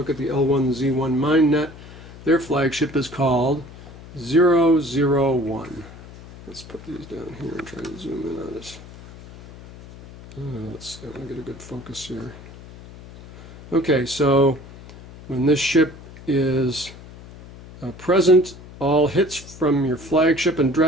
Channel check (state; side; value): noise; left; hum, 17 dB below the sound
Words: at the L1Z1 MineNet. Their flagship is called 001. Let's put these down here and try to zoom in on it. Let's see, I want to get a good focus here. Okay, so when this ship is present, all hits from your flagship and